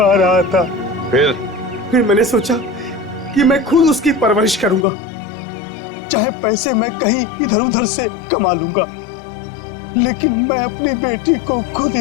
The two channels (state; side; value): drops out; right; at 4.9 s